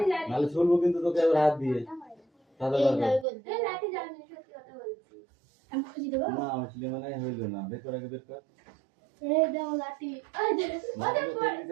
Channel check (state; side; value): drops out; left; at 3.2 s